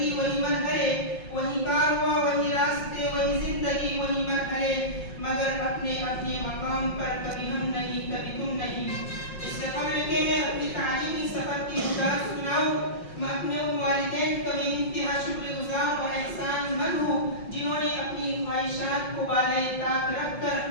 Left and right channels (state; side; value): late; right; 5.6 ms